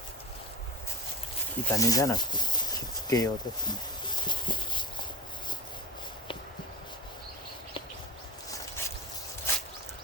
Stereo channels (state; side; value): normal; both; correlation 0.35